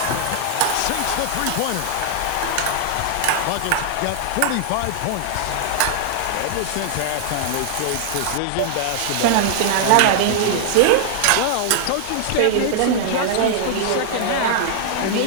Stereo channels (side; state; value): both; different; correlation -0.01